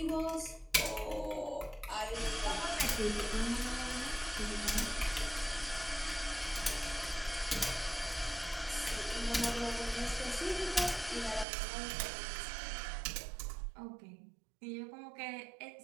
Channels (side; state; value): left; drops out; at 11.5 s